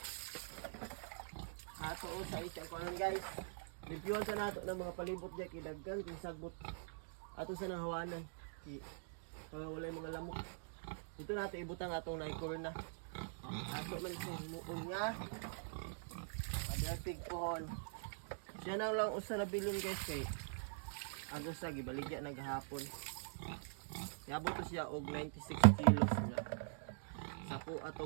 kunon guys. Reviewan sa nato ng mga palibot diya kidaggan kung sagbot ato sa nang hawanan. Wala yung mga lamok. Dito natin ibutang atong naikorna. Ato man siya muon nga. Paderpig pohon. Siya na lang usa na bilon guys kay agos sa gibaligya naghapon. Yabot to siya og 96 kilos na. Sapo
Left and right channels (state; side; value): silent; left; digital silence